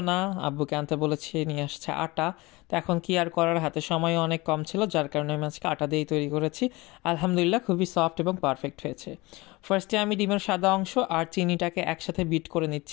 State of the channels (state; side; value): quieter; right; 22.7 dB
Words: না, আব্বুকে আনতে বলেছি, নিয়ে আসছে আটা। তো এখন কি আর করার, হাতে সময় অনেক কম ছিল, যার কারণে আমি আজকে আটা দিয়েই তৈরি করেছি। আলহামদুলিল্লাহ খুবই সফট এবং পারফেক্ট হয়েছে। ফার্স্টে আমি ডিমের সাদা অংশ আর চিনিটাকে একসাথে বিট করে